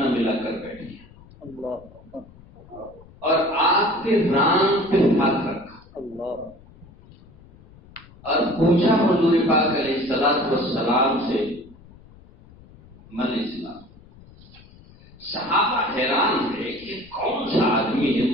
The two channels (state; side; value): noise; left; rumble, 24 dB below the sound